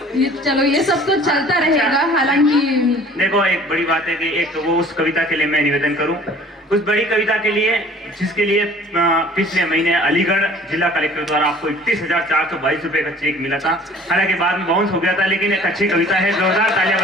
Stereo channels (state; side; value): normal; both; correlation 0.50